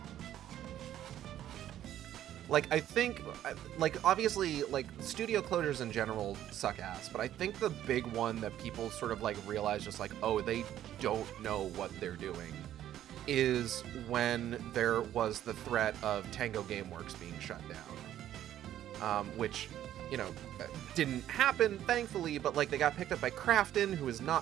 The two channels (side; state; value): left; quieter; 11.9 dB